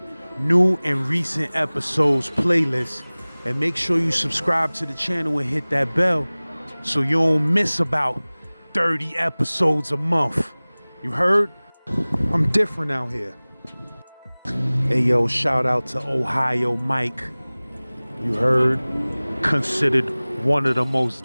new and recent episodes playlist. And make sure you subscribe to the channel and hit that bell so you don't miss about 30 episodes a month. You heard? I'm different out here. Hey yo, shout out to Ohio Mike. You heard? Considered one of the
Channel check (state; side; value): inverted; both; correlation -1.00